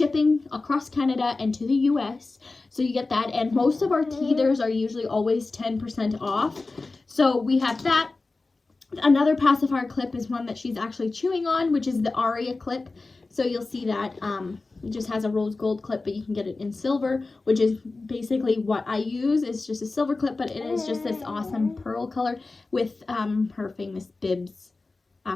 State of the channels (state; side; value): quieter; right; 3.5 dB